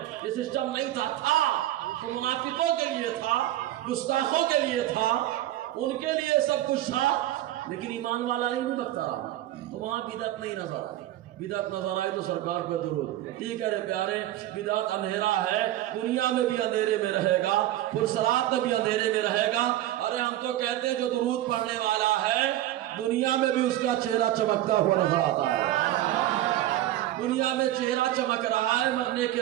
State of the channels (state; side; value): quieter; left; 14.0 dB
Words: یہ سسٹم نہیں تھا تو منافقوں کے لیے تھا، گستاخوں کے لیے تھا، ان کے لیے سب کچھ تھا. لیکن ایمان والا نہیں بھٹکتا رہا تو وہاں بدعت نہیں نظر آئی. بدعت نظر آئی تو سرکار پہ درود. ٹھیک ہے پیارے، بدعت اندھیرا ہے، دنیا میں بھی اندھیرے میں رہے گا، پرسرات میں بھی اندھیرے میں رہے گا. ارے ہم تو کہتے ہیں جو درود پڑھنے والا ہے دنیا میں بھی اس کا چہرہ چمکتا ہوا نظر آتا ہے. دنیا میں چہرہ چمک رہا ہے، مرنے کے